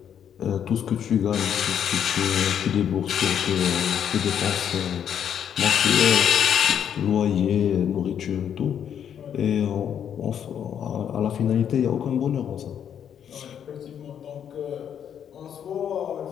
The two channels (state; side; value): quieter; right; 8.9 dB